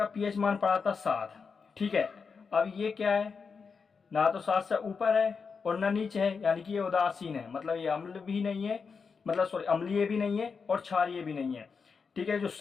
पीएच मान पढ़ा था 7। ठीक है। अब ये क्या है, ना तो 7 से ऊपर है और ना नीचे है, यानी कि ये उदासीन है। मतलब ये अम्ल भी नहीं है, मतलब सॉरी अम्लीय भी नहीं है और क्षारीय भी नहीं है। ठीक है। जो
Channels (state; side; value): quieter; right; 5.4 dB